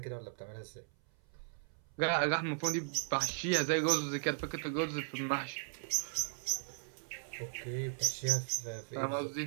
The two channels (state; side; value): silent; left; 53 dB below the other